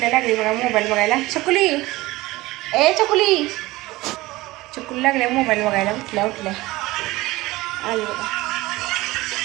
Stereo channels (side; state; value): left; quieter; 19.4 dB